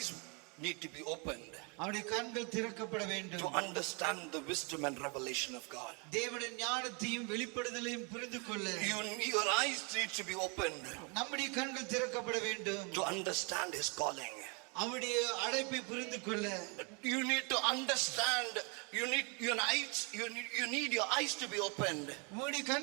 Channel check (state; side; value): quieter; left; 33.2 dB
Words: need to be opened அவனுடைய கண்கள் திறக்கப்பட வேண்டும். to understand the wisdom and revelation of God. தேவனுடைய ஞானத்தையும் வெளிப்படுதலையும் புரிந்து கொள்ள Your eyes need to be opened நம்முடைய கண்கள் திறக்கப்பட வேண்டும். to understand His calling. அவருடைய அழைப்பை புரிந்து கொள்ள You need to understand. You need your eyes to be opened உன்னுடைய